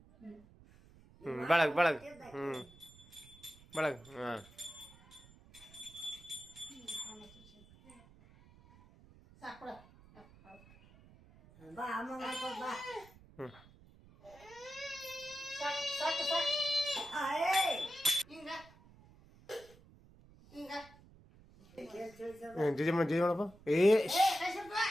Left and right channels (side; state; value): right; noise; rumble, 24 dB below the sound